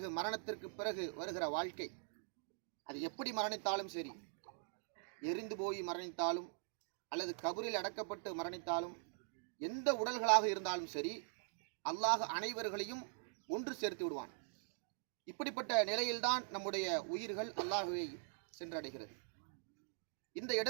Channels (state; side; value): silent; left; digital silence